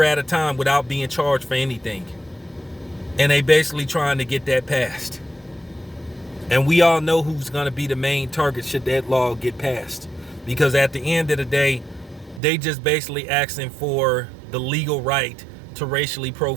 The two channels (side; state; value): left; drops out; at 12.4 s